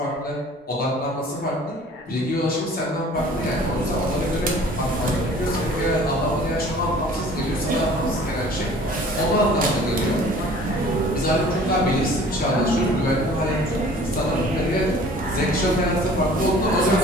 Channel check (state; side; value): normal; both; correlation 0.49